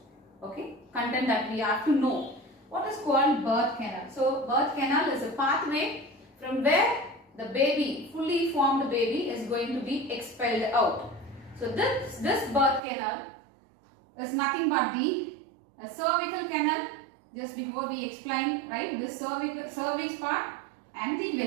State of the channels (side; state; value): left; drops out; at 12.8 s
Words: content that we have to know. What is called birth canal? So birth canal is a pathway from where the baby, fully formed baby, is going to be expelled out. So this birth canal is nothing but the cervical canal. Just before we explained, right, this cervix part and the